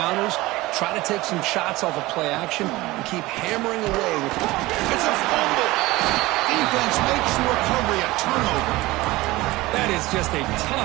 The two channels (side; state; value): left; quieter; 19.6 dB